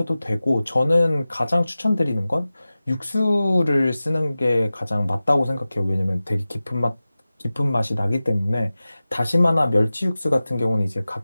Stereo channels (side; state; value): both; inverted; correlation -0.96